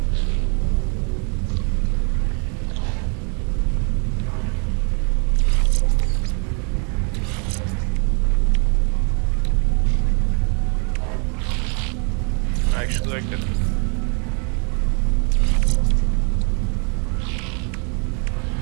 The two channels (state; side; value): quieter; left; 37.7 dB